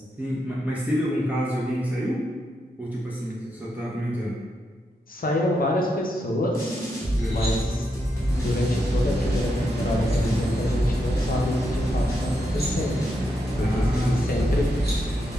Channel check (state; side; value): normal; both; correlation 0.82